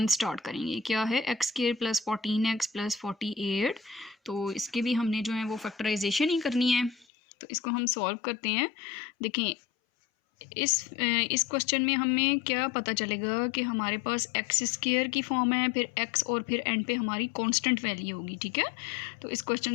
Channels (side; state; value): right; drops out; at 7.1 s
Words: स्टार्ट करेंगे। क्या है? X square plus 14x plus 48। तो इसके भी हमने जो है वो फैक्टराइजेशन ही करनी है, तो इसको हम सॉल्व करते हैं। देखें, इस क्वेश्चन में हमें क्या पता चलेगा कि हमारे पास एक्स स्क्वायर की फॉर्म है, फिर एक्स और फिर एंड पे हमारी कांस्टेंट वैल्यू होगी। ठीक है, तो इस